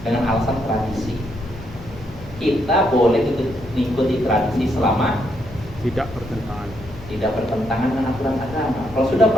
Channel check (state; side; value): noise; left; hum, 17 dB below the sound